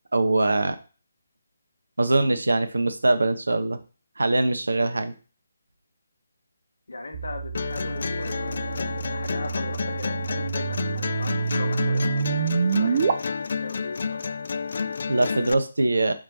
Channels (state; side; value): inverted; both; correlation -0.89